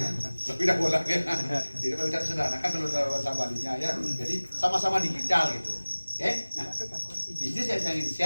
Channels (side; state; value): both; inverted; correlation -1.00